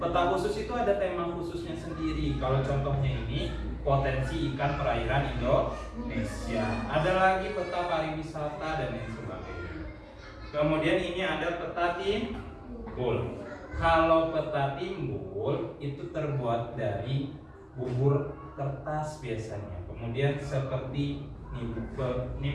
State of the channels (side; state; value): both; identical; correlation 1.00